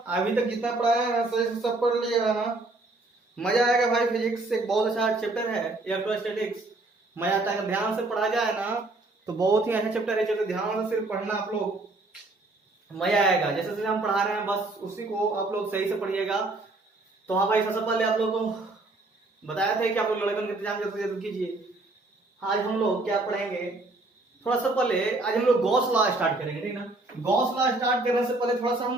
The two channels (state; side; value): quieter; left; 3.1 dB